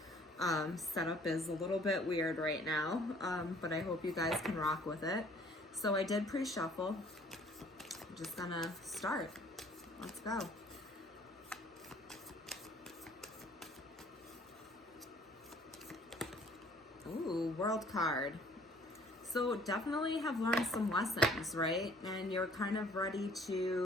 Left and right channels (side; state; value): both; normal; correlation 0.56